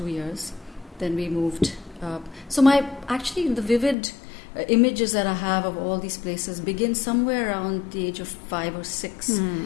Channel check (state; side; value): drops out; right; at 4.0 s